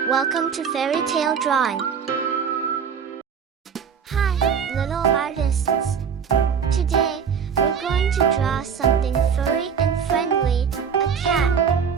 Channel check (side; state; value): left; quieter; 7.0 dB